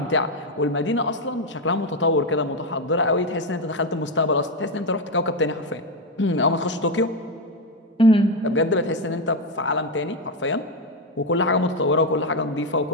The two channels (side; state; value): both; normal; correlation 0.08